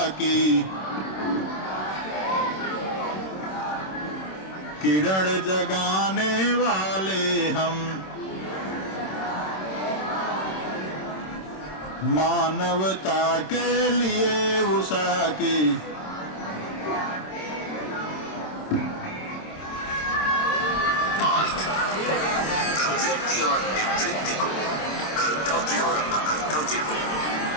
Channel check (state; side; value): late; right; 26 ms